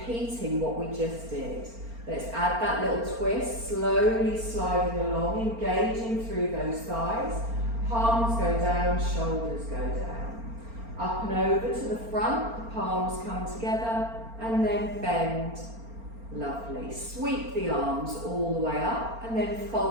what we just did. Let's add that little twist, slowly sliding along, engaging through those thighs. Palms go down, shoulders go down. Up and over to the front, the palms come together, and then bend. Lovely. Sweep the arms all the way up, and then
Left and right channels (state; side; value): late; left; 4.4 ms